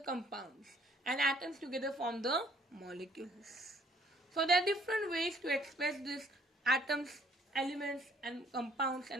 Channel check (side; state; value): both; normal; correlation 0.61